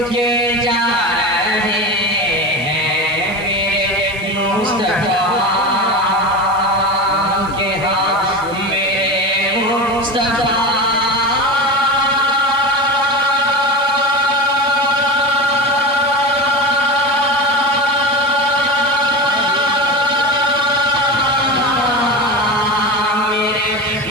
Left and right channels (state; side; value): noise; right; hiss, 21 dB below the sound